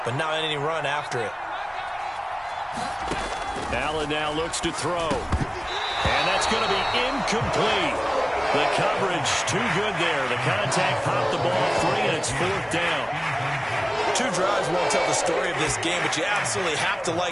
but not any run after it. Allen now looks to throw. And that's going to be incomplete. The coverage too good there. The contact popped the ball free, and it's 4th down. 2 drives won't tell the story of this game, but you absolutely have to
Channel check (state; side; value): identical; both; correlation 1.00